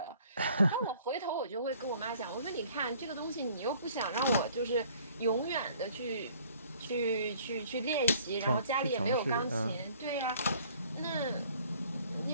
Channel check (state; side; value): inverted; both; correlation -0.56